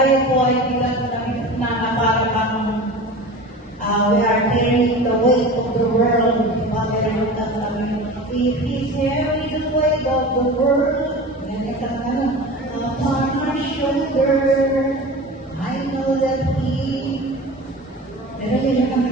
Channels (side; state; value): both; normal; correlation 0.34